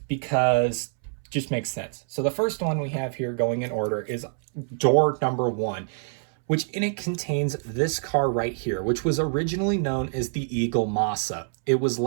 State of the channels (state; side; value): silent; left; 61 dB below the other